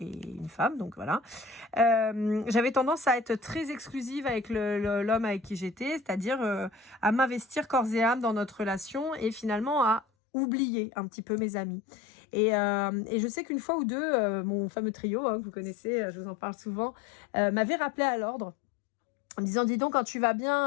femme, donc voilà. J'avais tendance à être très exclusive avec l'homme avec qui j'étais, c'est-à-dire à m'investir corps et âme dans notre relation et finalement à oublier un petit peu mes amis. Et je sais qu'une fois ou deux, mon fameux trio, hein, que vous connaissez, je vous en parle souvent, m'avait rappelé à l'ordre. En me disant, dis donc, quand tu vas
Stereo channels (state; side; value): drops out; right; at 10.1 s